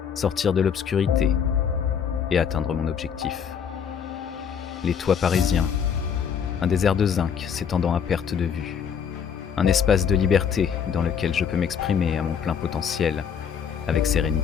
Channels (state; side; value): quieter; right; 7.4 dB